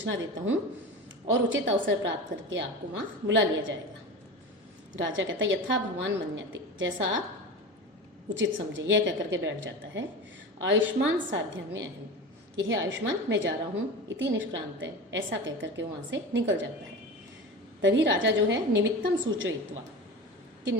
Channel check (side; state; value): both; normal; correlation 0.30